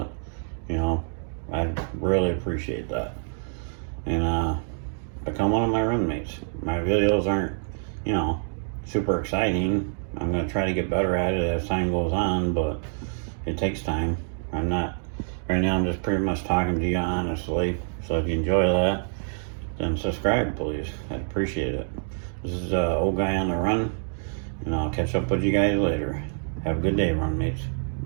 You know, I'd really appreciate that. And become one of my roommates. My videos aren't, you know, super exciting. I'm going to try to get better at it as time goes on, but it takes time. Right now I'm just pretty much talking to you honestly. So if you enjoy that, then subscribe, please. I'd appreciate it. This is Old Guy on the Run, and I'll catch up with you guys later. Have a good day, run mates.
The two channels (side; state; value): left; silent; digital silence